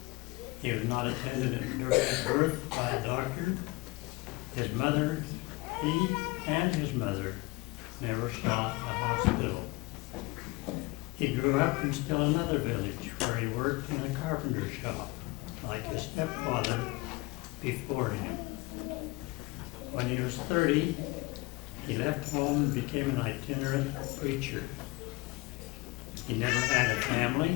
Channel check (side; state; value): right; quieter; 23.0 dB